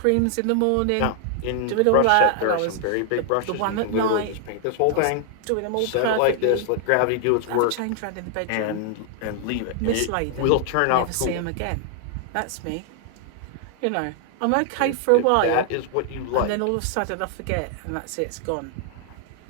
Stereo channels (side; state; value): both; different; correlation 0.00